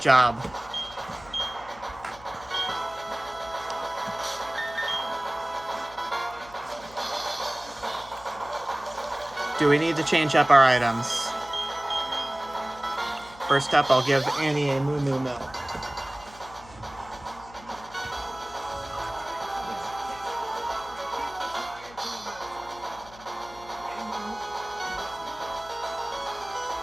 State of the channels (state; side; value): noise; left; hum, 20 dB below the sound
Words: Do we need to change up our items? First up, I'll give Annie a Moo Moo Milk.